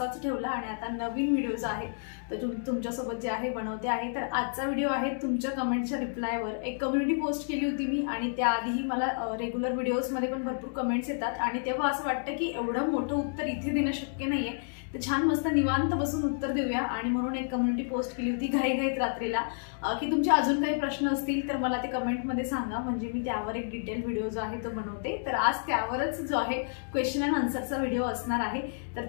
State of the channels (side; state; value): right; silent; digital silence